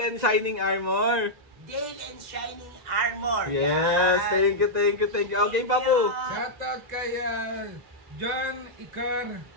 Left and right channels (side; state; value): left; late; 2.0 ms